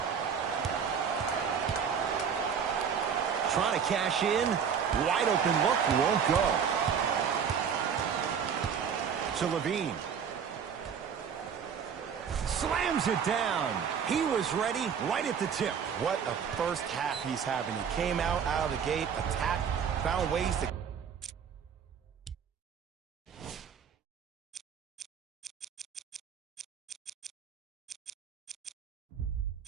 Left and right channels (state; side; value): quieter; left; 7.2 dB